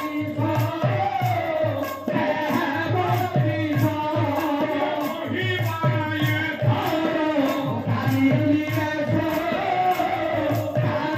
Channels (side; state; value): both; identical; correlation 1.00